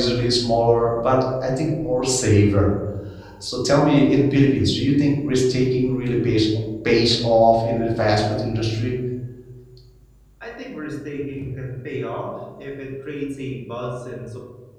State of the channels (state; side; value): identical; both; correlation 1.00